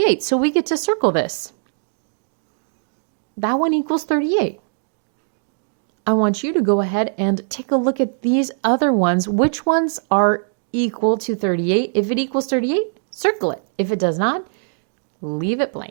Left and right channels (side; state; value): left; silent; digital silence